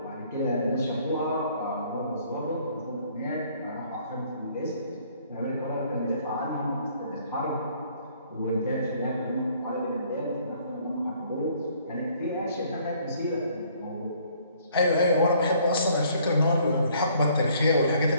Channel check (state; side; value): inverted; both; correlation -0.61